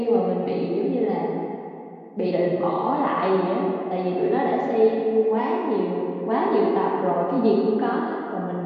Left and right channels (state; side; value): identical; both; correlation 1.00